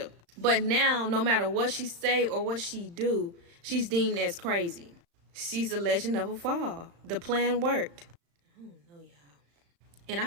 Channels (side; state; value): left; late; 35 ms